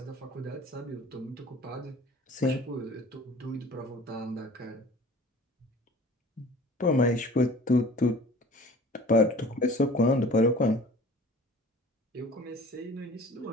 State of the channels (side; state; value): both; normal; correlation 0.45